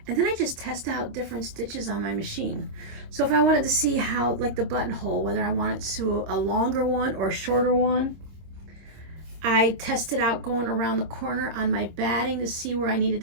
And then I just test out different stitches on my machine. So if I wanted to see how, like the buttonhole, whether I want it to a longer one or a shorter one, I tested out going around the corner on my batting to see where I needed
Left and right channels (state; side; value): late; left; 25 ms